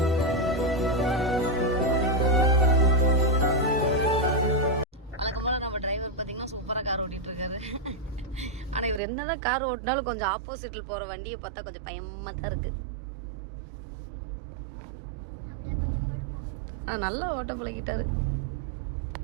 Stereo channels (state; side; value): drops out; left; at 9.0 s